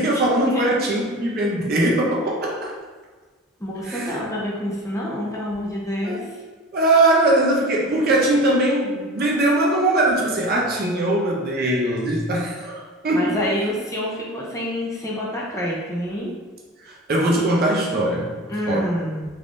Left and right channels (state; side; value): normal; both; correlation 0.32